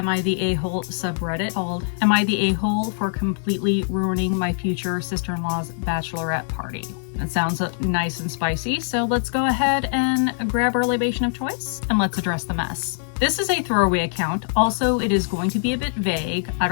I the A-Hole subreddit called Am I the A-Hole for Completely Ruining My Future Sister-in-Law's Bachelorette Party? It sounds nice and spicy, so let's go ahead and grab our libation of choice and let's address the mess. This is a throwaway account. Also, it is going to be a bit vague. I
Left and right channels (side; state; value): right; silent; digital silence